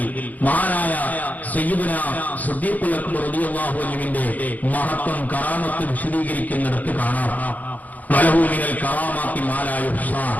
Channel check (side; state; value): right; late; 0.079 ms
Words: മഹാനായ സയ്യിദുനാ സിദ്ദീഖുൽ അക്ബർ റളിയല്ലാഹു അൻഹുവിന്റെ മഹത്വം കറാമത്ത് വിശദീകരിക്കുന്നിടത്ത് കാണാം. വലഹു മിനൽ കറാമാത്തി മാ ലാ യുഹ്സാ